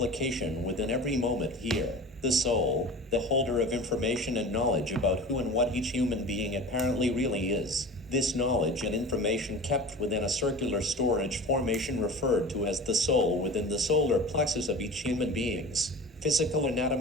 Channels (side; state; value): both; normal; correlation 0.35